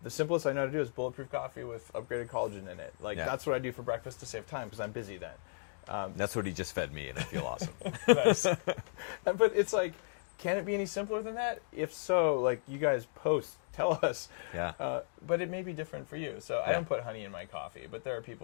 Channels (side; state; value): right; silent; digital silence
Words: the simplest I know how to do is bulletproof coffee with upgraded collagen in it. Like that's what I do for breakfast to save time because I'm busy then. That's what he just fed me, and I feel awesome. Nice. But it's like, can it be any simpler than that? If so, like you guys post, tell us. Yeah. But it may be different for you. So I don't put honey in my coffee, but there are